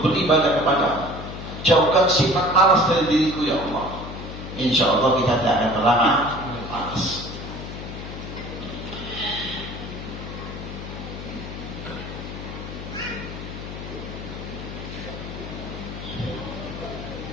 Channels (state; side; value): noise; left; hum, 9 dB below the sound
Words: beribadah kepadamu. Jauhkan sifat malas dari diriku ya Allah. Insya Allah kita tidak akan pernah malas.